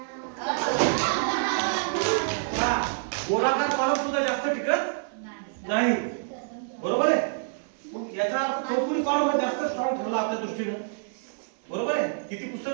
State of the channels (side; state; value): left; silent; 58 dB below the other